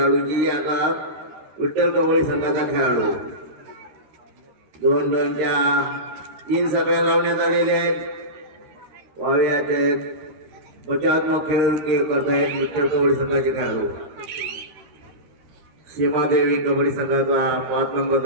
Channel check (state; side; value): late; left; 13 ms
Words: आता विठ्ठल कबड्डी संघाचा खेळाडू 2 रनच्या 3 सगळ्या लावण्यात आलेले आहेत। वाव्यात बचावात्मक खेळ करतायत विठ्ठल कबड्डी संघाचे खेळाडू। सीमादेवी कबड्डी संघाचा 5